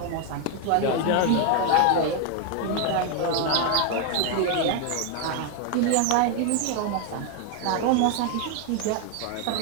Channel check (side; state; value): both; different; correlation 0.01